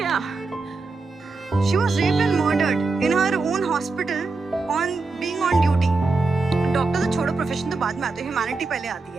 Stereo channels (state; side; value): quieter; left; 3.8 dB